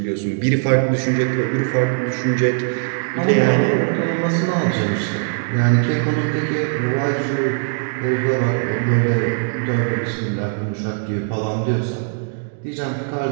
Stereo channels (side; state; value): left; silent; digital silence